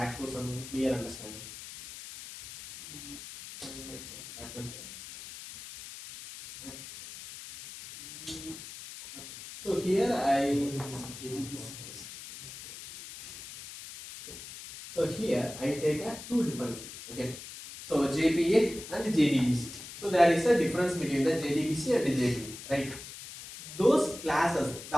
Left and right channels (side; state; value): left; noise; hiss, 13 dB below the sound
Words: to some clear understanding. So here so here I take a two dependencies. Okay. So JPA and JDBC. So there is a difference between the JDBC and the JPA, right? Those classes,